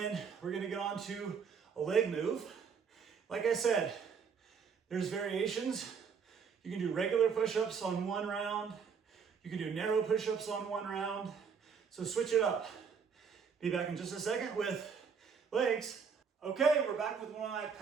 we're gonna get on to a leg move. Like I said, there's variations. You can do regular push-ups on one round. You can do narrow push-ups on one round. So switch it up. Be back in just a second with legs. Okay, we're back with one of my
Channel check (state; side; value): quieter; left; 6.4 dB